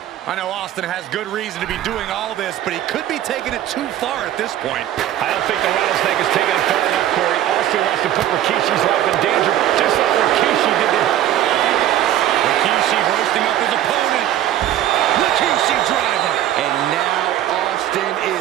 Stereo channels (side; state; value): left; quieter; 12.2 dB